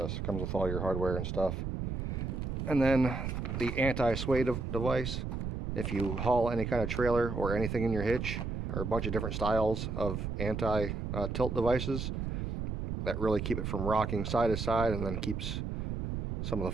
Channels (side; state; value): right; noise; rumble, 3 dB below the sound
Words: Comes with all your hardware and stuff. And then the anti-sway device. If you haul any kind of trailer or anything in your hitch, or a bunch of different styles of anti-tilt devices that really keep it from rocking side to side, and then keeps some of the